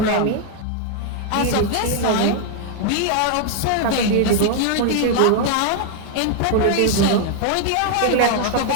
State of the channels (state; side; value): different; both; correlation 0.00